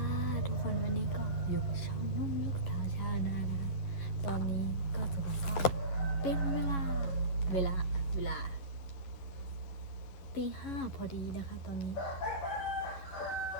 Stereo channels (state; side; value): late; right; 11 ms